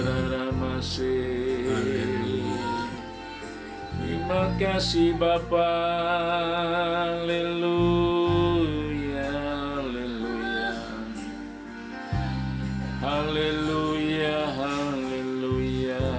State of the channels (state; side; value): identical; both; correlation 1.00